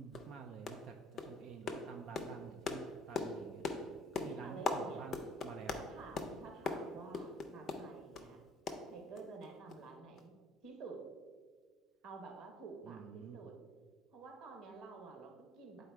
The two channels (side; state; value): both; normal; correlation 0.55